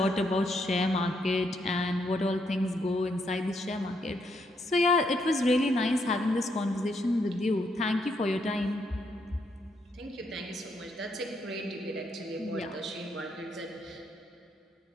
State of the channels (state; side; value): normal; both; correlation 0.76